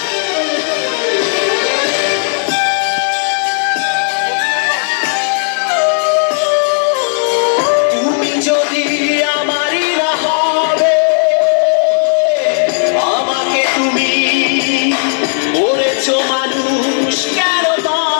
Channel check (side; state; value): right; silent; 65 dB below the other